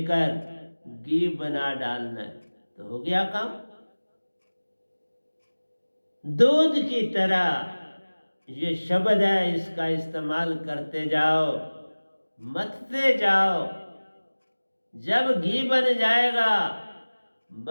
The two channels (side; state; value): both; inverted; correlation -1.00